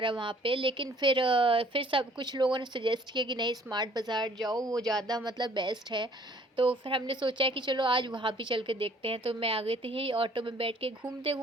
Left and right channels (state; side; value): normal; both; correlation 0.57